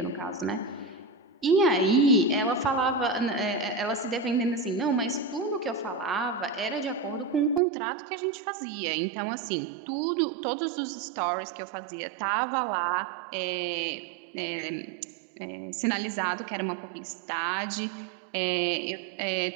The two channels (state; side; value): drops out; left; at 7.6 s